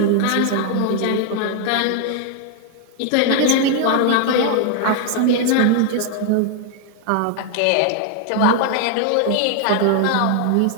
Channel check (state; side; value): different; both; correlation 0.00